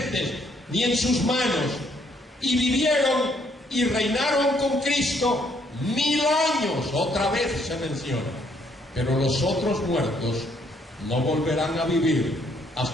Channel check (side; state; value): both; normal; correlation 0.69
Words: ni en sus manos, y vivieron y reinaron con Cristo 1000 años, otra vez se menciona, pero los otros muertos no volverán a vivir